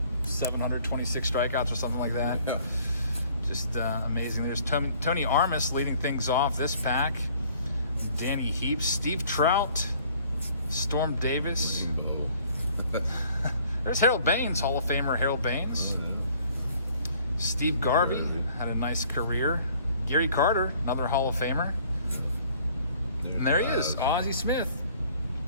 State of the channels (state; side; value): inverted; both; correlation -0.57